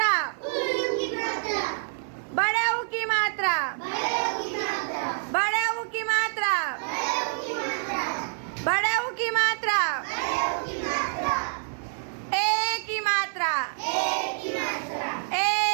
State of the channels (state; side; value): silent; left; 60 dB below the other